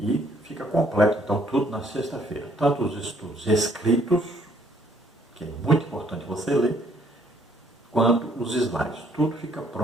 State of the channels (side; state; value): both; normal; correlation 0.65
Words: fica completo, então, tudo na sexta-feira. Tanto os estudos escritos, que é muito importante você ler, quanto os slides. Tudo fica